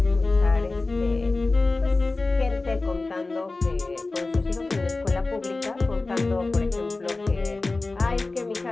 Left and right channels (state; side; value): quieter; right; 3.4 dB